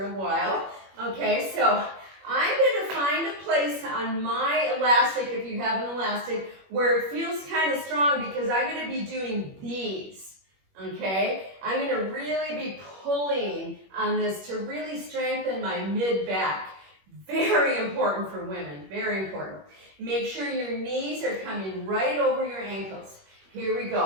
a while. Okay, so I'm going to find a place on my elastic, if you have an elastic, where it feels kind of strong because I'm going to be doing these. Okay, I'm going to really be pulling on this to really strengthen my mid-back. Very important for women, very important. Make sure your knees are coming right over your ankles. Here we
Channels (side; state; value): left; late; 21 ms